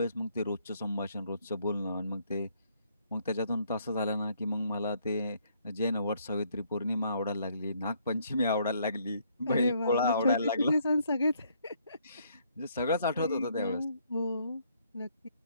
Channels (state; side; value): inverted; both; correlation -0.68